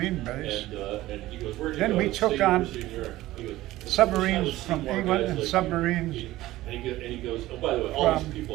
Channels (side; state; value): left; quieter; 16.5 dB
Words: base. Then we took on submarines from England and submarines from